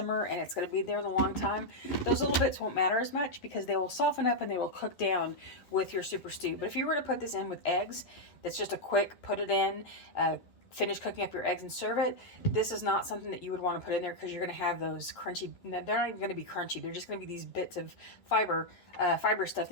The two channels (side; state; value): right; late; 11 ms